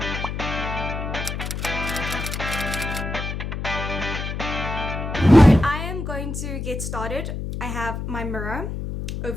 I am going to get started. I have my mirror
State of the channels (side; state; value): left; noise; hum, 5 dB below the sound